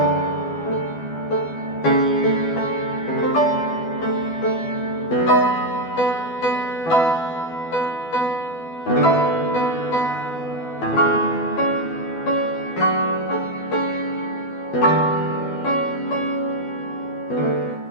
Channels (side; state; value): right; late; 12 ms